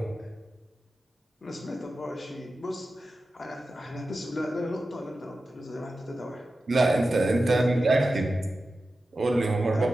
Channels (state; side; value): normal; both; correlation 0.93